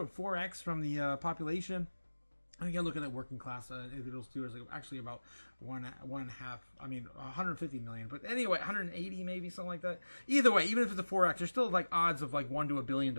4x from the population. I think I look at that working class individuals too. It's like actually about one and a half. I mean, 150 million. But anyway, 180 maybe, something like that. Either way, even if it's a 4x, there's still like odds of like 1 to a billion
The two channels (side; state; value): both; inverted; correlation -1.00